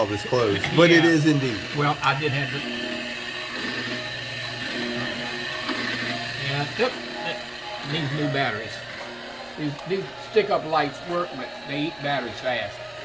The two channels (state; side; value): noise; right; rumble, 29 dB below the sound